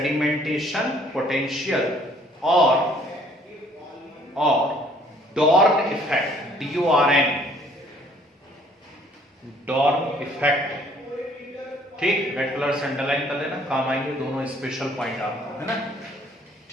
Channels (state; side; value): normal; both; correlation 0.59